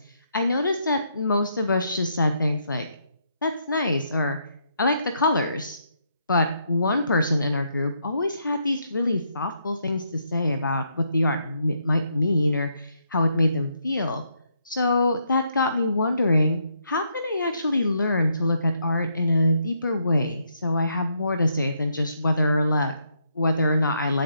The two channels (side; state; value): both; inverted; correlation -0.76